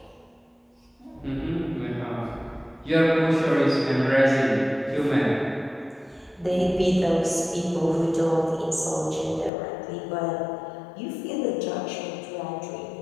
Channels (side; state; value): right; drops out; at 9.5 s